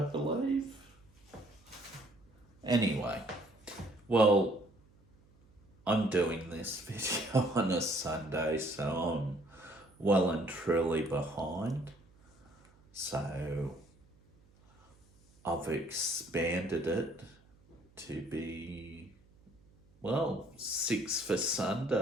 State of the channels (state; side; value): noise; right; hum, 30 dB below the sound